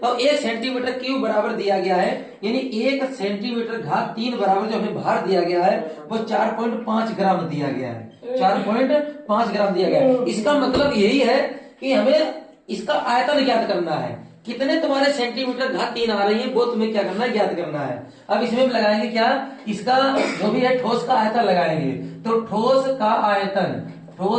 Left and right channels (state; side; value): identical; both; correlation 1.00